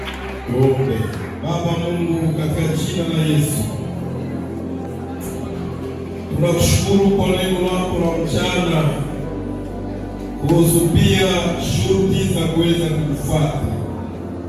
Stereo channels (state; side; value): identical; both; correlation 1.00